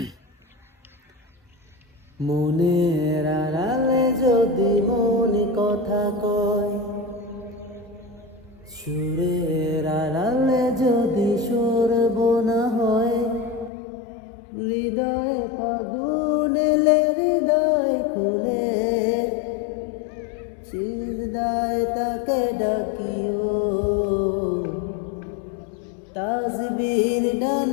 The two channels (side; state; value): right; drops out; at 13.7 s